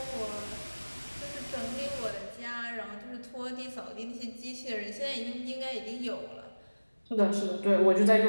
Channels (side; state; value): both; inverted; correlation -1.00